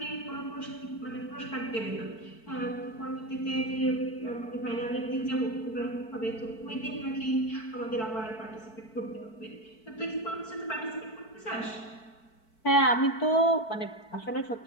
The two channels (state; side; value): late; right; 4.5 ms